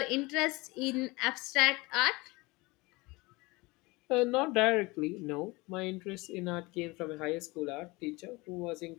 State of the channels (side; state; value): right; quieter; 23.8 dB